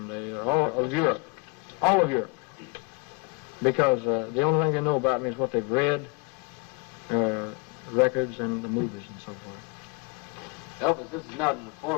all of Europe, because the only thing they know about me is what they've read, records and the movies and so forth. Elvis, this is not in the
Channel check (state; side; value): quieter; right; 30.1 dB